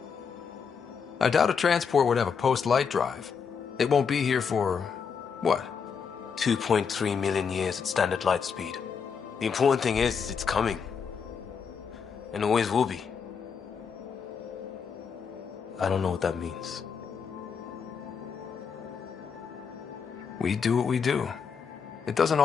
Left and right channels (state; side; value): quieter; right; 6.3 dB